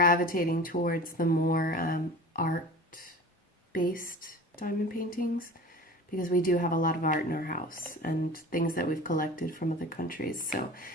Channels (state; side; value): normal; both; correlation 0.38